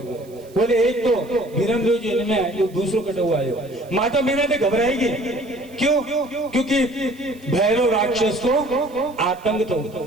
बोले एक तो बीरमदेव जन्मे है दूसरो कटाऊ आयो। माता मीना ने घबराएगी क्यों? क्योंकि भैरव राक्षस को आतंक तो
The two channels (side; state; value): right; noise; hiss, 27 dB below the sound